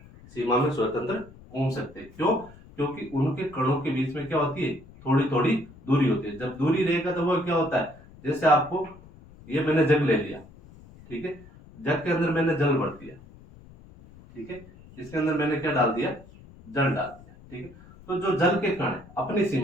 सीमा में स्वतंत्र घूम सकते हैं। क्यों? क्योंकि उनके कणों के बीच में क्या होती है, थोड़ी थोड़ी दूरी होती है। जब दूरी रहेगा तो वो क्या होता है, जैसे आपको ये मैंने जग ले लिया, ठीक है, जग के अंदर मैंने जल भर दिया, ठीक है, इसके अंदर मैंने क्या डाल दिया, जल डाल दिया। ठीक है, तो जो जल के कण है अपनी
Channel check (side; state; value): left; noise; rumble, 22 dB below the sound